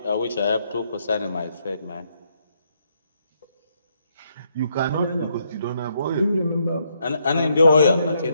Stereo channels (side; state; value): both; inverted; correlation -0.75